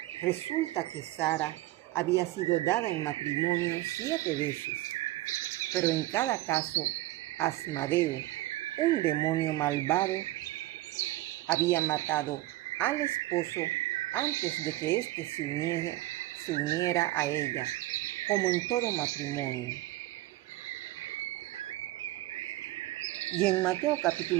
Resulta que Sara había sido dada en matrimonio 7 veces, pero en cada caso Asmadeo, un demonio malvado, había matado al esposo antes de que éste se uniera a ella, como en todo matrimonio. Y en Mateo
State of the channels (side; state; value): left; quieter; 16.9 dB